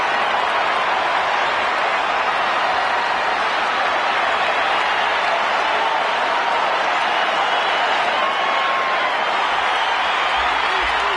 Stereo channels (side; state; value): both; identical; correlation 1.00